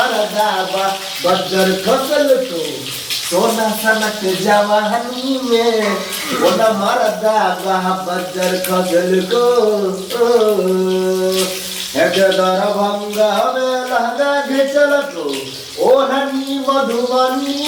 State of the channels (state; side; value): identical; both; correlation 1.00